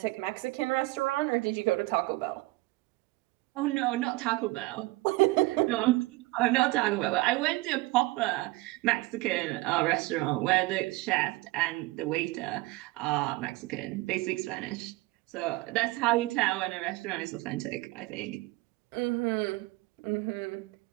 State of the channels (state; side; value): quieter; left; 21.3 dB